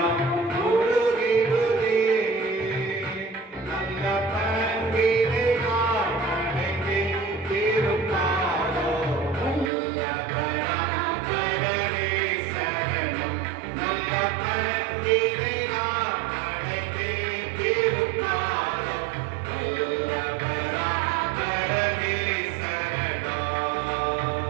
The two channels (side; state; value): left; drops out; at 9.7 s